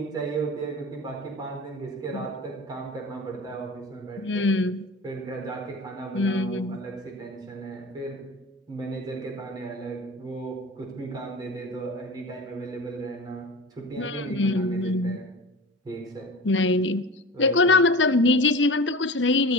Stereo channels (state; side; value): normal; both; correlation 0.34